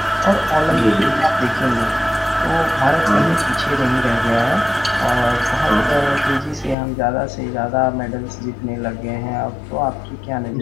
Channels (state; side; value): drops out; right; at 6.8 s